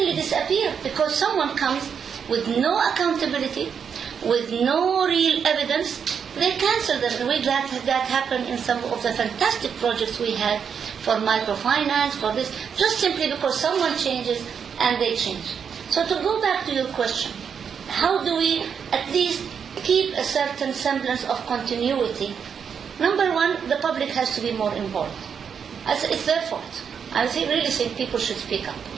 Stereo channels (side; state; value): left; quieter; 7.0 dB